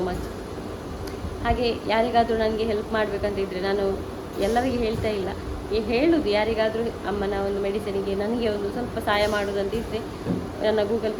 ಮಚ್. ಹಾಗೆ ಯಾರಿಗಾದರೂ ನನಗೆ ಹೆಲ್ಪ್ ಮಾಡಬೇಕಂತ ಇದ್ದರೆ, ನಾನು ಎಲ್ಲರಿಗೆ ಹೇಳ್ತಾ ಇಲ್ಲ, ಹೇಳುವುದು ಯಾರಿಗಾದರೂ ಅಮ್ಮನ ಒಂದು ಮೆಡಿಸಿನಿಗೆ ನನಗೆ ಒಂದು ಸ್ವಲ್ಪ ಸಹಾಯ ಮಾಡೋದಂತ ಇದ್ದರೆ ನನ್ನ ಗೂಗಲ್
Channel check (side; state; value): both; identical; correlation 1.00